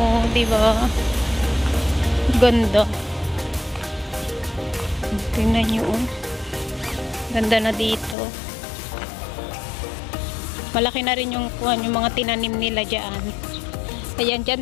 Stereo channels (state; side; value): drops out; right; at 8.2 s